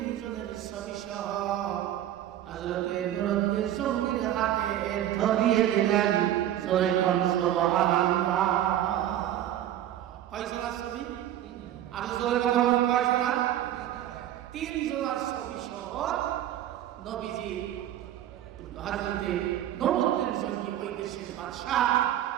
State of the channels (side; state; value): left; quieter; 12.0 dB